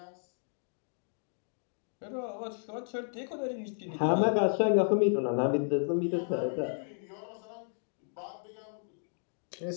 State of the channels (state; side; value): silent; right; digital silence